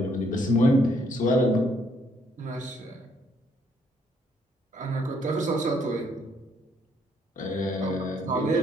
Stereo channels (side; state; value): both; normal; correlation 0.69